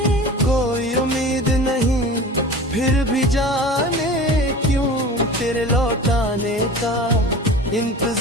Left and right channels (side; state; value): both; normal; correlation 0.37